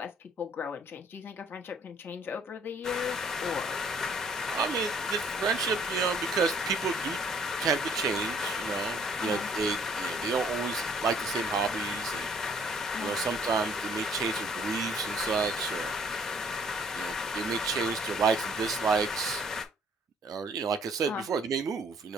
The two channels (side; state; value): both; normal; correlation 0.61